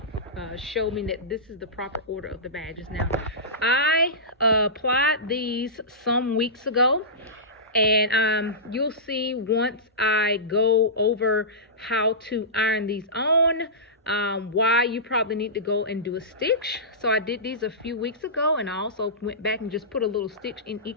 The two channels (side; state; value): both; normal; correlation -0.19